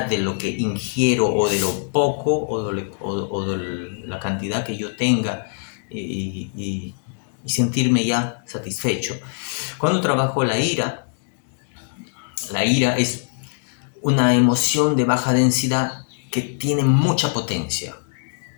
de lo que ingiero o de lo poco o de la cantidad que yo tenga y sentirme ya satisfecho. Cuando trabajo la ira es una emoción de baja densidad que tiene mucha potencia.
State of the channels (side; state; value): right; silent; digital silence